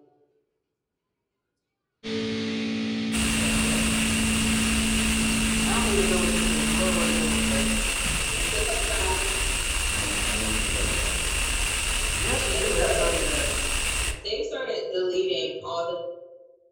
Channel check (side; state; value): both; identical; correlation 1.00